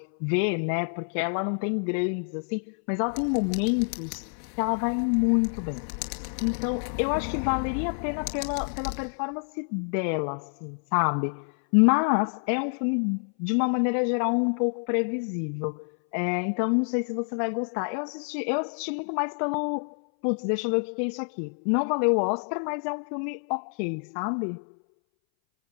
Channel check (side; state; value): right; silent; 60 dB below the other